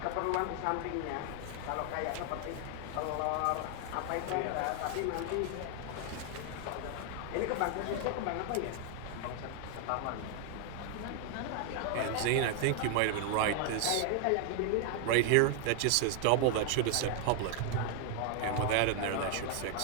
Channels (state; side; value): different; both; correlation 0.00